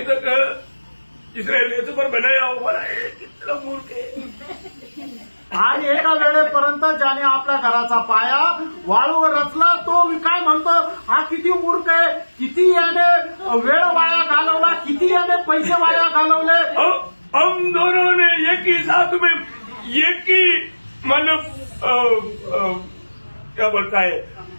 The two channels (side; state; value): both; inverted; correlation -1.00